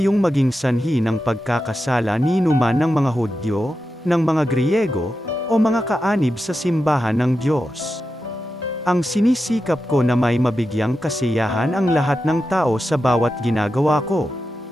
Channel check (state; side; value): normal; both; correlation 0.90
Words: maging sanhi ng pagkakasala ni numan ng mga Hudyo, ng mga Griyego, o mga kaanib sa simbahan ng Diyos. Ang sinisikap ko na may mabigyang kasiyahan ang lahat ng tao sa bawat ginagawa ko.